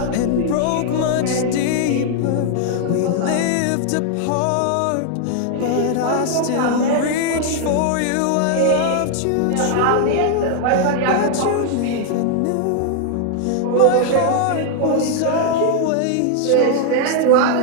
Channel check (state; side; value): different; both; correlation 0.00